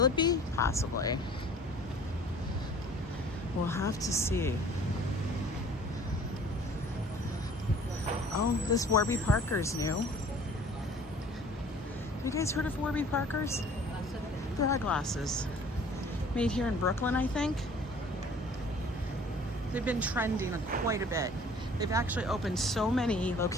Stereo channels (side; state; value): both; normal; correlation 0.50